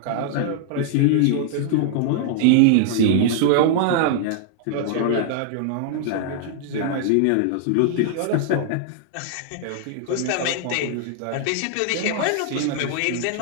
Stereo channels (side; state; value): both; different; correlation -0.01